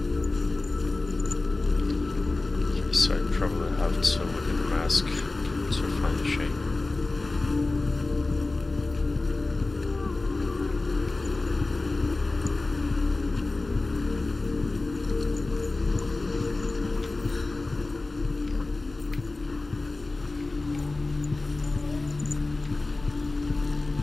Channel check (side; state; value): right; quieter; 3.2 dB